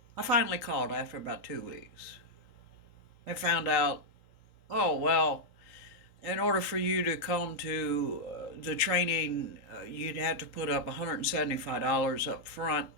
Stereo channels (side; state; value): right; late; 3.8 ms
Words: I finally called after about 2 weeks and found out, oh, well, in order for you to come to the training, you'd have to put up $175 up front,